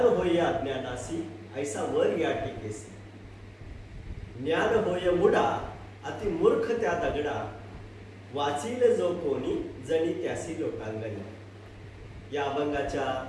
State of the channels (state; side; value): identical; both; correlation 1.00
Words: होय अज्ञानासी, ऐसा वर या टिकेसी. ज्ञान होय मुडा, अति मूर्ख त्या दगडा, वाचील जो कोणी, जणी त्यासी लोटांगणी. या अभंगाच्या